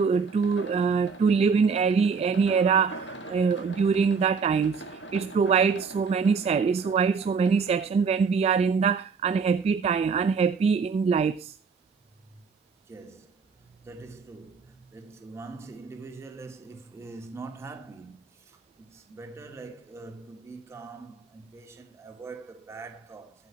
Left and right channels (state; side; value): quieter; left; 5.4 dB